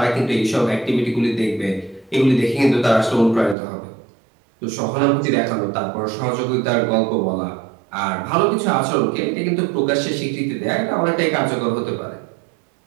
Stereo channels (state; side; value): drops out; left; at 3.6 s